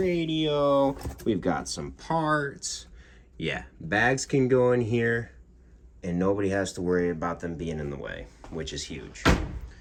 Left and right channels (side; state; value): both; identical; correlation 1.00